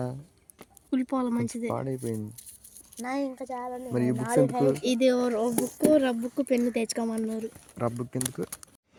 కుళ్ళిపోవాలి మంచిది, పాడైపోయింది. ఇంకా చాలా. మరి ఈ బుక్స్ ఎందుకు? ఇది రబ్బుకు పెన్ను తెచ్చుకోమన్నారు. రబ్బుక్ ఎందుకు?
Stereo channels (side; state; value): both; identical; correlation 1.00